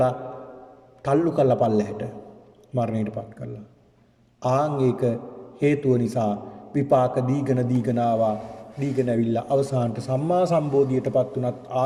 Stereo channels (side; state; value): both; identical; correlation 1.00